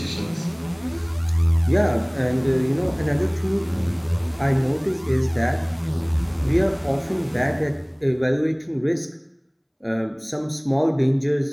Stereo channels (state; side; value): identical; both; correlation 1.00